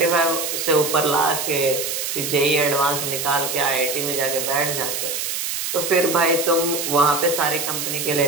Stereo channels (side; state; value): right; noise; hiss, 3 dB below the sound